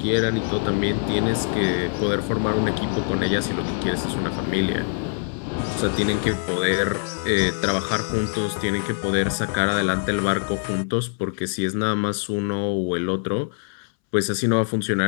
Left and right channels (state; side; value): silent; right; 63 dB below the other